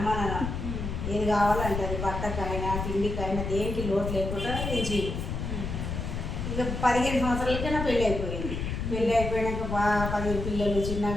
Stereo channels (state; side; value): noise; left; rumble, 4 dB below the sound